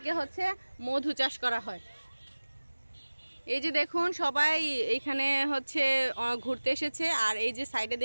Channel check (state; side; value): inverted; both; correlation -1.00